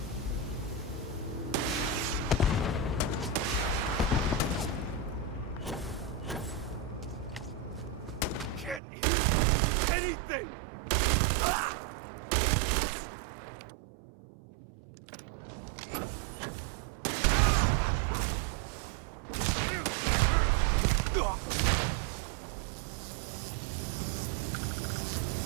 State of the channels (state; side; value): drops out; left; at 8.8 s